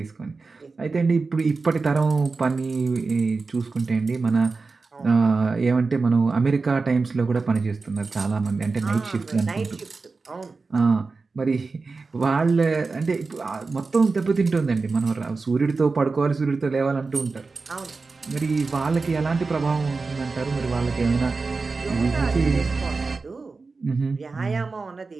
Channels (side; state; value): left; quieter; 4.1 dB